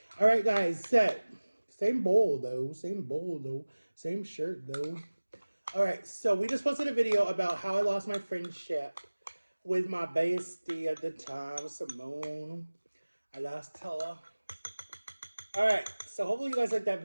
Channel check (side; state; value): both; inverted; correlation -1.00